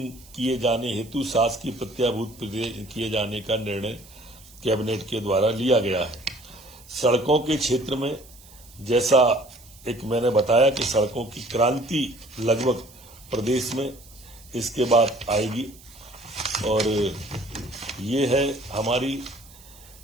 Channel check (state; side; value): noise; right; hiss, 23 dB below the sound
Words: किए जाने हेतु शासकीय प्रत्याभूत किए जाने का निर्णय कैबिनेट के द्वारा लिया गया है। सड़कों के क्षेत्र में जैसा एक मैंने बताया कि सड़कों की क्रांति लगभग प्रदेश में इसके बाद आएगी, और ये है हमारी